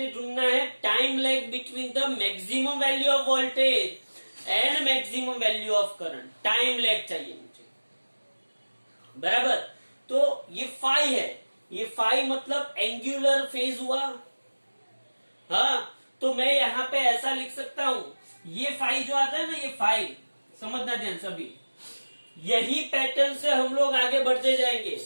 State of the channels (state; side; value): inverted; both; correlation -1.00